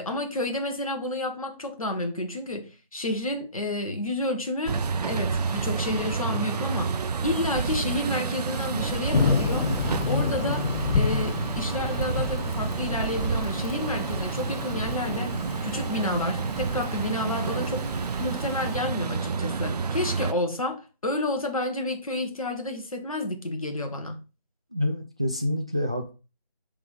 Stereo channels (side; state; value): both; inverted; correlation -0.45